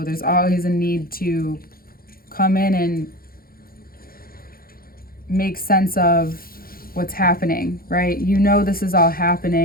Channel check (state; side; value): late; right; 0.43 ms